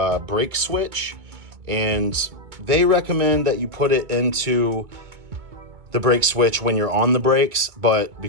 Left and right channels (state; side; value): late; left; 2.1 ms